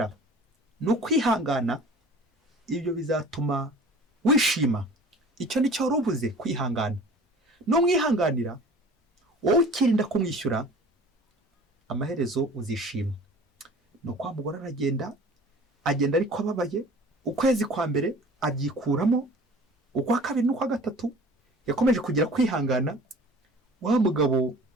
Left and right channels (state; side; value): normal; both; correlation 0.45